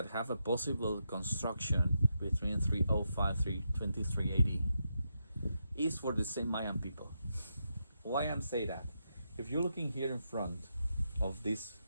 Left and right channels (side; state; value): both; inverted; correlation -0.83